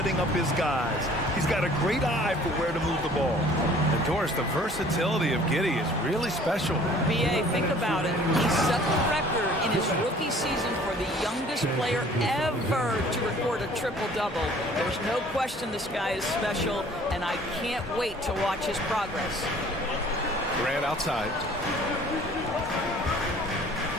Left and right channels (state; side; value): normal; both; correlation 0.52